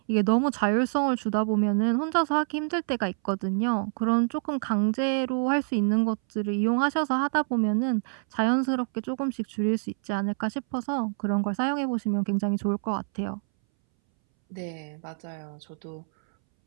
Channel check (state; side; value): silent; left; 60 dB below the other